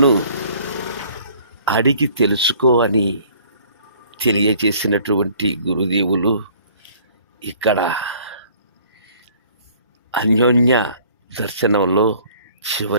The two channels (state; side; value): inverted; both; correlation -0.55